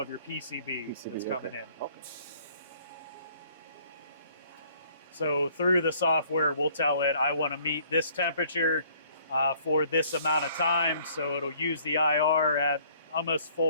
your PCB that's coming in. Okay. So through the software, we'll tell it, I want to meet this temperature for this amount of time. So it'll use the IR at almost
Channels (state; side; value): inverted; both; correlation -0.60